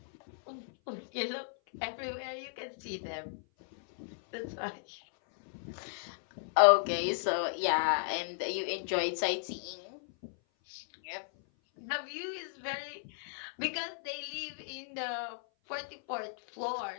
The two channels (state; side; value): silent; right; 54 dB below the other